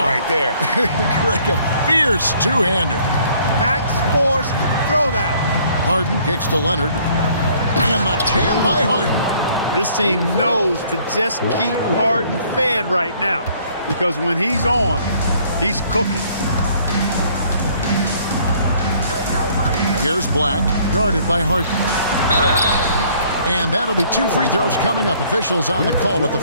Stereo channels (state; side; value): inverted; both; correlation -0.60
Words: right there. Like a fierce two-hander. Max Force, throw that. Harden kicks to Leonard. And the jam by Harden. This team knows to just keep Harden fed right now, because when he's on, he's cooking. Here's Black, guarded by Harden. And that'll be 2 free throws coming up. Officials on the call with the